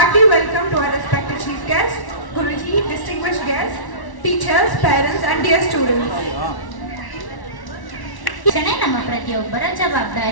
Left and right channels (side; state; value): right; late; 1.1 ms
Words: hearty welcome to our respected chief guests, Guruji, distinguished guests, teachers, parents and dear students. ಶಿಕ್ಷಣ ನಮ್ಮ ಪ್ರತಿಯೊಬ್ಬರ